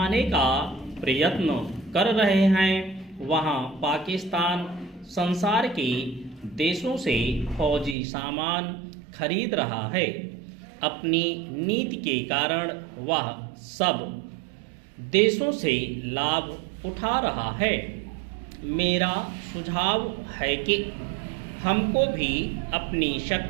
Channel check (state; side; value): drops out; left; at 8.0 s